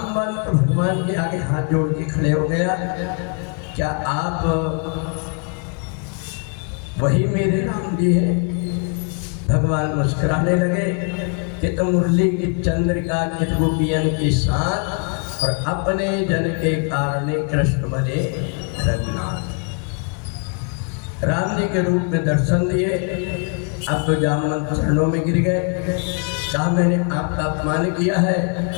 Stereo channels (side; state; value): right; quieter; 37.2 dB